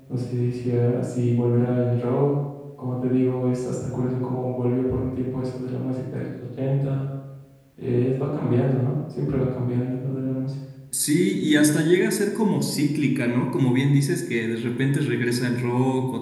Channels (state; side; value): identical; both; correlation 1.00